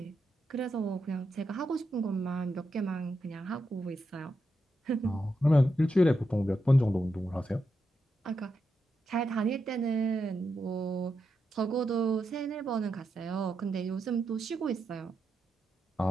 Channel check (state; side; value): normal; both; correlation 0.85